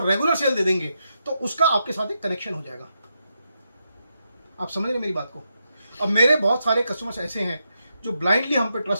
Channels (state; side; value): inverted; both; correlation -0.84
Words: रेगुलर सेल दे देंगे तो उसका आपके साथ एक कनेक्शन हो जाएगा। आप समझ रहे मेरी बात को? अब मेरे बहुत सारे कस्टमर्स ऐसे हैं जो ब्लाइंडली हम पे